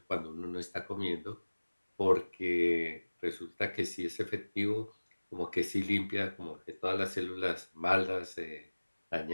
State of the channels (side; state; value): both; inverted; correlation -1.00